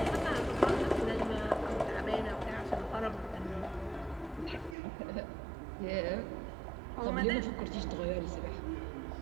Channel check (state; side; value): drops out; left; at 4.8 s